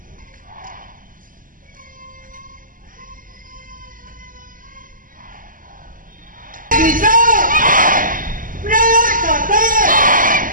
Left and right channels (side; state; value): left; late; 0.40 ms